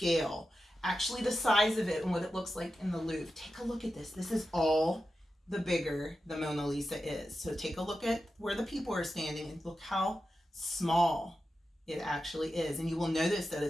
actually the size of it and what it looks like in the Louvre. Take a look at this. This is all the bigger the Mona Lisa is. So take a look at where the people are standing and look how small it actually is. And you will notice that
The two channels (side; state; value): both; normal; correlation 0.91